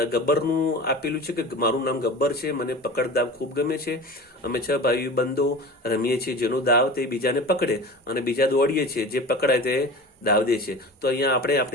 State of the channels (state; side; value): normal; both; correlation 0.34